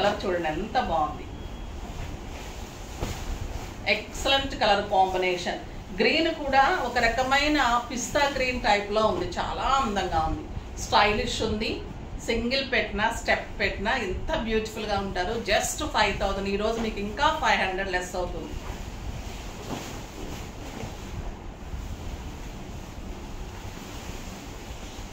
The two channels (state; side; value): identical; both; correlation 1.00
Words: చూడండి ఎంత బాగుంది, ఎక్సలెంట్ కలర్ కాంబినేషన్. గ్రీన్ కూడా ఒక రకమైన పిస్తా గ్రీన్ టైప్లో ఉంది, చాలా అందంగా ఉంది, స్టైలిష్ ఉంది. సింగిల్ పెట్టినా స్టెప్ పెట్టినా ఎంత బ్యూటిఫుల్గా ఉంటారు. జస్ట్ 5000. ఈరోజు మీకు ఇంకా 500 లెస్ అవుతుంది.